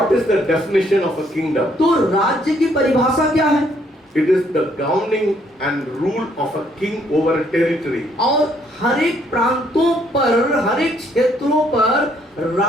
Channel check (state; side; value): normal; both; correlation 0.68